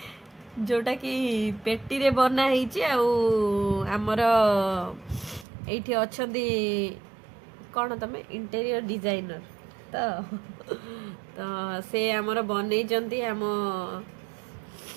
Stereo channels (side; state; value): left; drops out; at 5.5 s